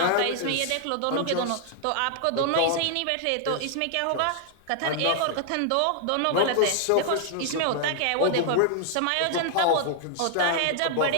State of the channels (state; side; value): different; both; correlation 0.00